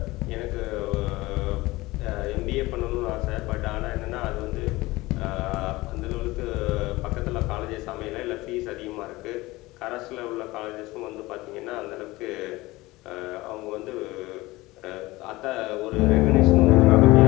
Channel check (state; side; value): quieter; right; 20.1 dB